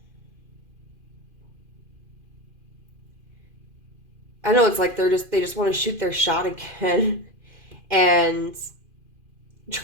I know it's like they just want to shoot their shot again and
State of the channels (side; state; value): left; late; 2.5 ms